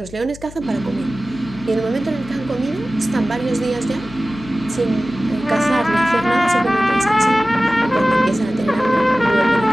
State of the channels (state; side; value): noise; left; hum, 17 dB below the sound